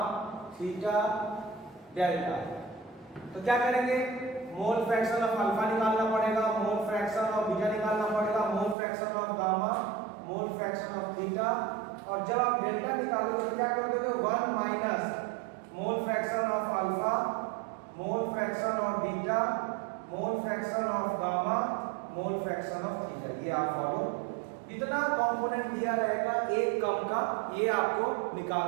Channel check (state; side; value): drops out; left; at 8.8 s